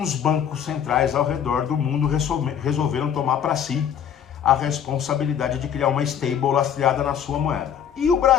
bancos centrais ao redor do mundo resolveram tomar para si a responsabilidade de criar uma stable lastreada na sua moeda. E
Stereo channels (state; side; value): quieter; right; 8.7 dB